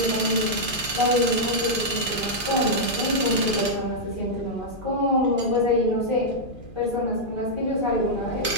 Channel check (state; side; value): late; right; 2.4 ms